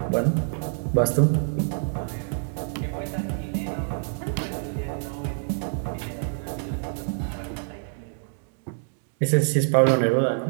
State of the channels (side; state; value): left; silent; digital silence